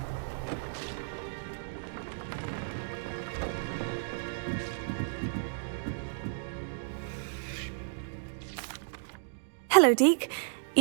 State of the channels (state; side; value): silent; left; digital silence